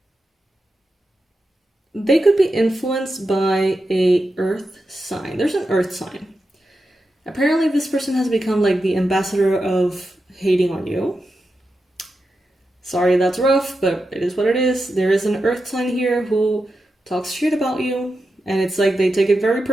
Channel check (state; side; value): normal; both; correlation 0.89